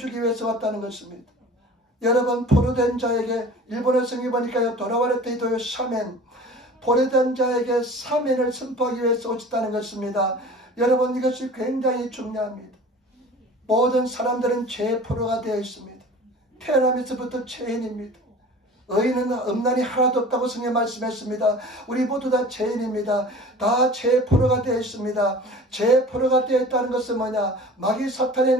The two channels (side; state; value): both; normal; correlation 0.42